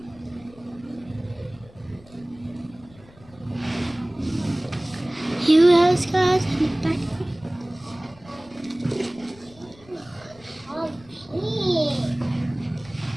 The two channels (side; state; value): left; noise; rumble, 24 dB below the sound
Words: You have scars on the back.